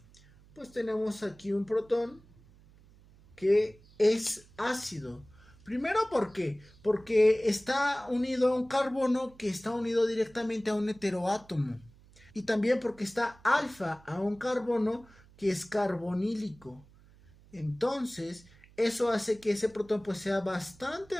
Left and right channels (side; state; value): right; noise; hum, 26 dB below the sound